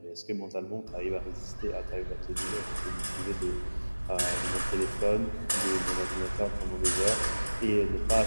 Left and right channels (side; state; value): both; inverted; correlation -1.00